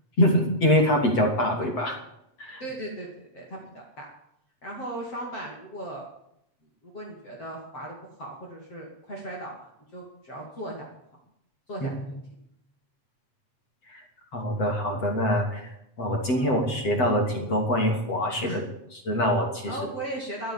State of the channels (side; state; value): right; late; 7.9 ms